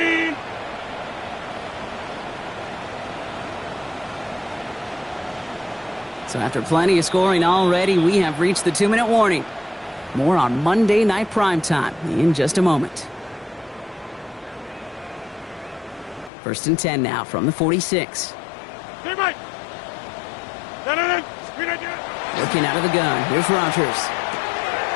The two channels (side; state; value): right; drops out; at 16.3 s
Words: So after plenty of scoring already, we have reached the 2-minute warning. More on Monday Night Primetime in just a moment. First and 10 now from the 46. Teammate. Looking out of the gun. Here's Rodgers.